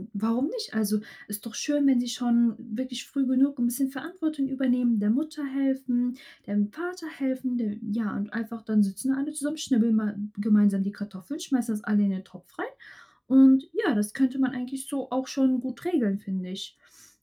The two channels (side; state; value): both; identical; correlation 1.00